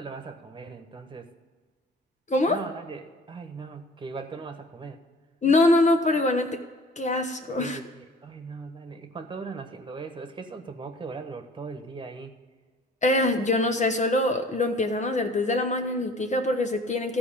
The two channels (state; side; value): normal; both; correlation 0.49